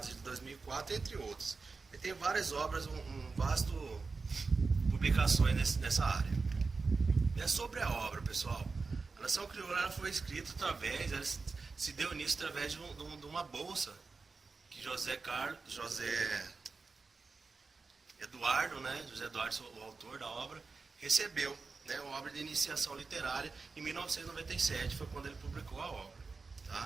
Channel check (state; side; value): quieter; left; 4.3 dB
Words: de 2004, entre outros. Ele tem várias obras, um vasto publicações nessa área. É sobre a obra, pessoal. A Nação Crioula foi escrita ela se deu início através de uma bolsa que José Eduardo, né? José Eduardo, o autor da obra, recebeu, né? Uma obra de iniciação literária em 1997, foi quando ele publicou a obra,